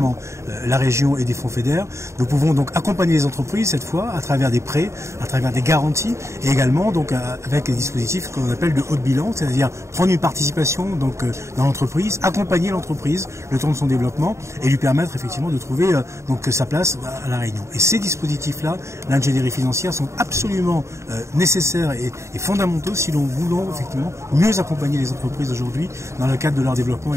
la région et des fonds FEDER, nous pouvons donc accompagner les entreprises cette fois à travers des prêts, à travers des garanties et également donc avec des dispositifs qu'on appelle de haut de bilan, c'est-à-dire prendre une participation donc dans l'entreprise, accompagner l'entreprise le temps de son développement et lui permettre effectivement de trouver donc sa place à la Réunion. Et ces dispositifs-là, l'ingénierie financière, sont absolument nécessaires et fondamentaux si l'on voulait effectivement mieux accompagner les entreprises aujourd'hui dans le cadre de leur développement et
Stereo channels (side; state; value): left; late; 0.14 ms